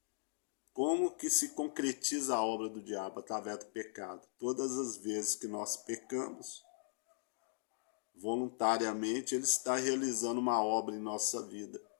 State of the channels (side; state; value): right; silent; digital silence